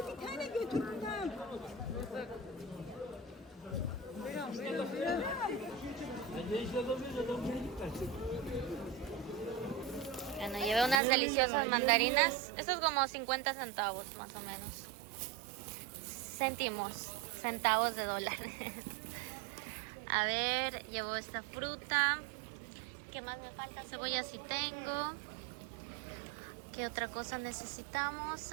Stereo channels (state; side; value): drops out; left; at 11.0 s